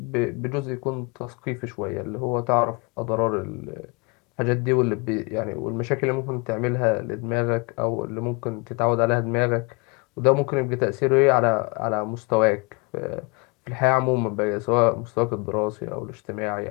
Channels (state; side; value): quieter; right; 29.8 dB